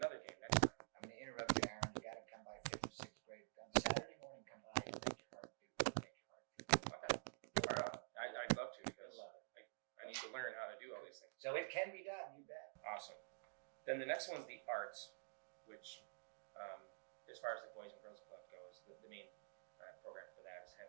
game next time. I'm going to interrupt you, Aaron. You got to come by 5th or 6th grade on Saturday morning. Come by and make your heart beat. Okay. I'd love to, because I need to learn how to do all these things. So it can be done. You bet. Awesome. Then the next one's the arts, which, as far as the Boys and Girls Club goes, the main program for that is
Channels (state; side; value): silent; left; digital silence